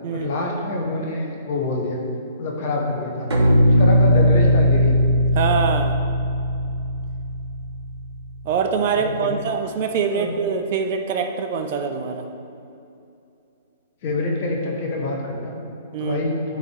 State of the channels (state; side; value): inverted; both; correlation -0.56